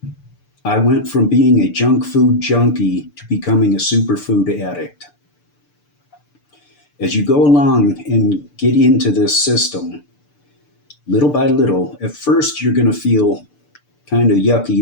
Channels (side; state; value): right; late; 6.8 ms